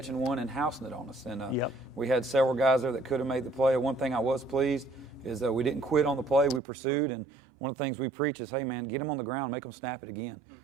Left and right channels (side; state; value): left; drops out; at 6.6 s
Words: one and housing it on us. And Yep. we had several guys there that could have made the play. One thing I was pleased is that we didn't quit on the play. We pursued, and one of the things we preach is, hey, man, get them on the ground, make them snap it again.